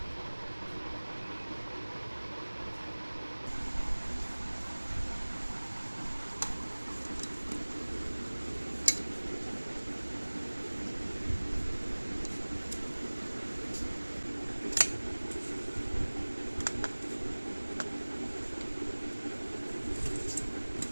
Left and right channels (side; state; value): both; inverted; correlation -1.00